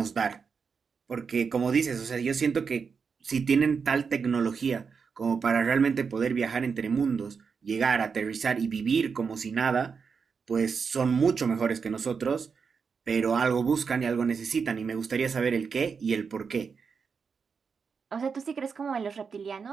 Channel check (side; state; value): left; quieter; 5.7 dB